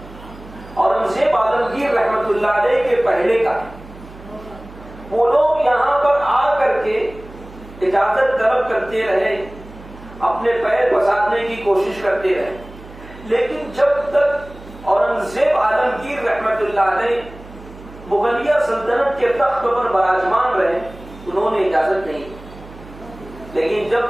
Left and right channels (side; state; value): right; noise; hum, 18 dB below the sound